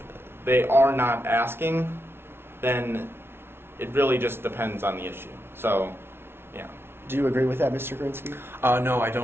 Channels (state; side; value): late; left; 0.12 ms